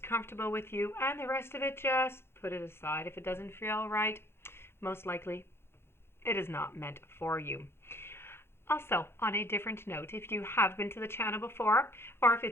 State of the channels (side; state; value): right; late; 0.12 ms